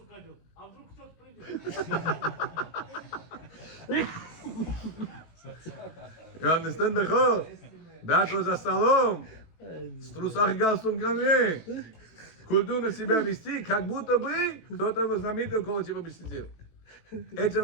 одел? А вдруг кто-то придет? You understand the whole? That was за столом. С трусах и галстуком ко мне. Культурно себя вести, как будто бы кто-то знаменитый около тебя бы сидел.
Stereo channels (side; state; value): right; late; 18 ms